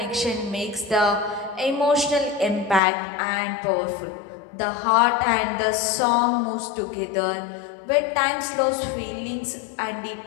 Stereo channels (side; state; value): right; drops out; at 2.8 s